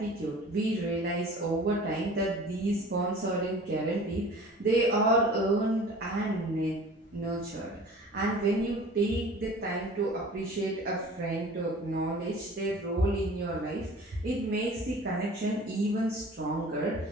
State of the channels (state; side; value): normal; both; correlation 0.44